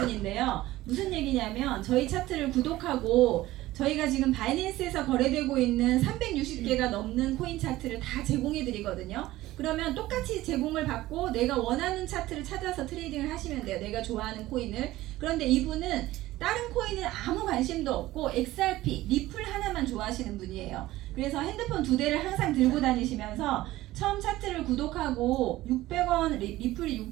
무슨 얘기냐면 저희 차트를 구독하고 저희가 지금 바이낸스에서 거래되고 있는 360개가 넘는 코인 차트를 다 제공해 드리거든요. 그러면 똑같이 제공을 받고 내가 원하는 차트를 찾아서 트레이딩을 하시면 돼요. 내가 좋아하는 코인을. 그런데 이분은 다른 코인은 아무 관심도 없고 XRP, 리플 하나만 좋아하시는 분이에요. 그래서 핸드폰 2대를 항상 들고 다니시면서 처음 차트를 구독하고 600원, 리플이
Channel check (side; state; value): left; quieter; 16.7 dB